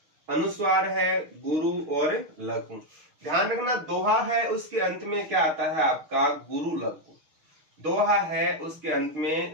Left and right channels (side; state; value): left; late; 6.4 ms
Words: अनुस्वार है गुरु और लघु। ध्यान रखना, दोहा है उसके अंत में क्या आता है? आपका गुरु लघु। दोहा है उसके अंत